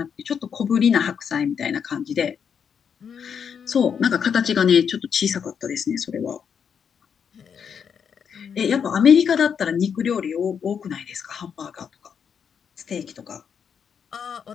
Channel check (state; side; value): quieter; right; 7.3 dB